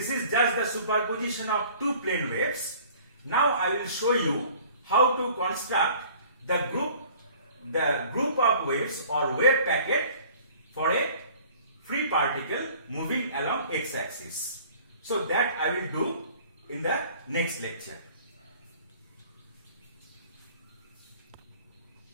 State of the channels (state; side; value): inverted; both; correlation -0.50